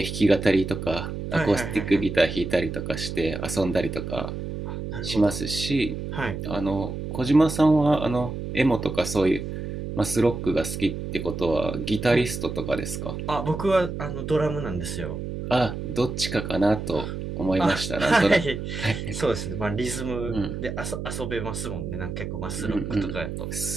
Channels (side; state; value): right; noise; hum, 6 dB below the sound